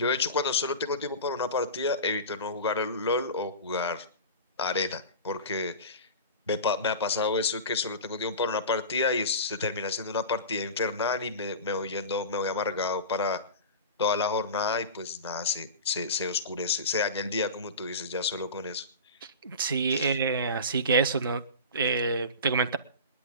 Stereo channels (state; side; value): inverted; both; correlation -0.30